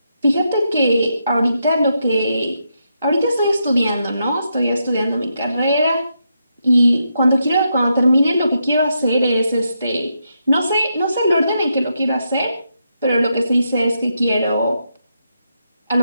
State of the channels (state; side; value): inverted; both; correlation -0.82